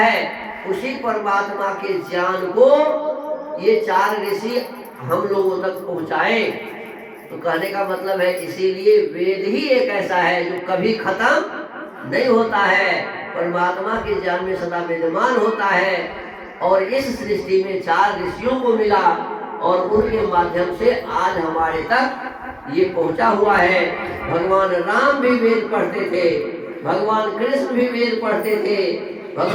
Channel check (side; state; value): both; identical; correlation 1.00